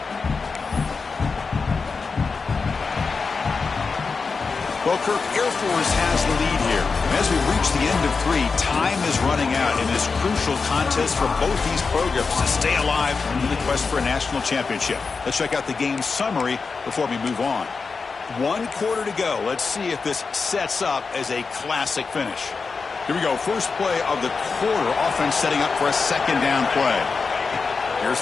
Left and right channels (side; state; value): right; quieter; 4.7 dB